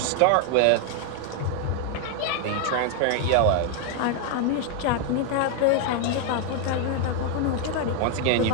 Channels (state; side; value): different; both; correlation 0.00